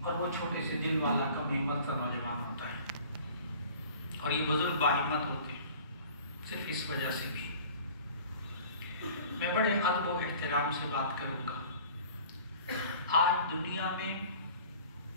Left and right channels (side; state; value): both; inverted; correlation -0.47